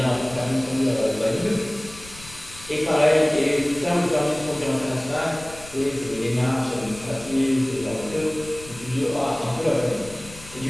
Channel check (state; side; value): noise; left; rumble, 18 dB below the sound